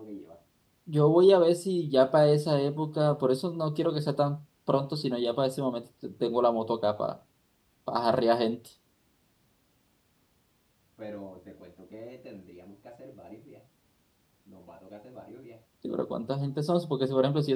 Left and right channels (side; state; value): both; identical; correlation 1.00